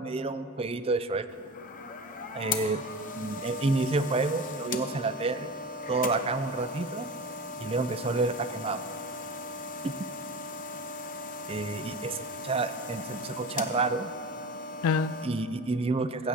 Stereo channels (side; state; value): both; normal; correlation 0.31